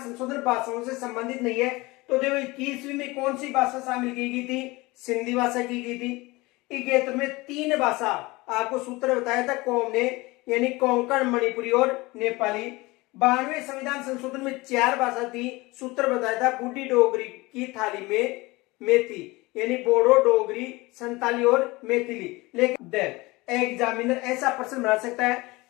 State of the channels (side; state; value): right; quieter; 22.4 dB